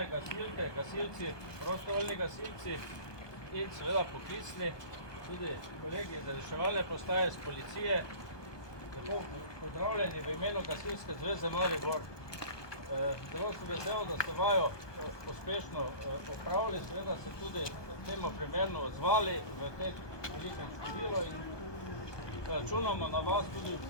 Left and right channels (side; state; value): right; late; 1.2 ms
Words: gasilke, gasilci, prostovoljni gasilci in seveda poklicni, tudi kolegi iz reševalne postaje, iz policije. Lepo pozdravljeni v imenu Gasilske zveze Maribor. Zelo sem vesel, da ste vajo uspešno opravili, seveda se tudi temu primerno odzvali v tem velikem številu in računamo na vas tudi v